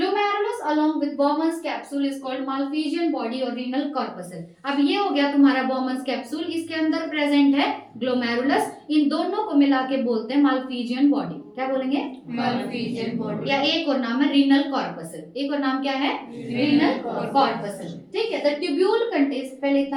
along with Bowman's capsule is called Malpighian body or renal corpuscle। अब ये हो गया तुम्हारा Bowman's capsule, इसके अंदर प्रेजेंट है ग्लोमेरुलस। इन दोनों को मिला के बोलते हैं Malpighian body। क्या बोलेंगे? Malpighian body। या एक और नाम है renal corpuscle। एक और नाम क्या है? renal corpuscle। ठीक है, the tubule contains, पहले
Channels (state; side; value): identical; both; correlation 1.00